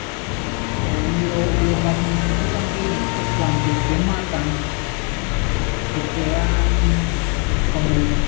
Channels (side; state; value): right; quieter; 36.4 dB